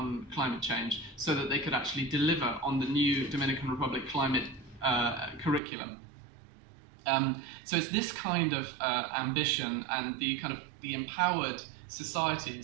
climate change so that they could actually deliver on the new Dominican Republic climate curriculum. So it's this kind of ambition and the kind of the empowered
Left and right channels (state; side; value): drops out; left; at 5.6 s